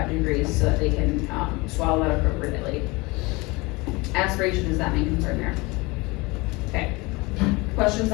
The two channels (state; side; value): quieter; right; 24.6 dB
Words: degrees so that they can swallow that appropriately. Aspiration is that main concern there. Okay. Questions